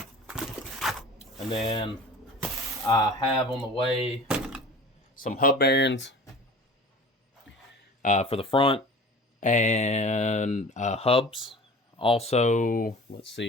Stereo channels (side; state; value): both; normal; correlation 0.41